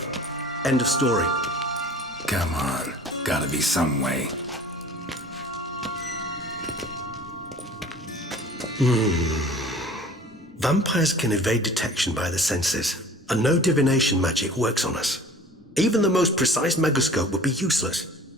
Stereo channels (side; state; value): both; normal; correlation 0.45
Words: End of story. Come on. Gotta be some way. Vampires can evade detection by the senses, and no divination magic works on us. Even the most precise megascope would be useless.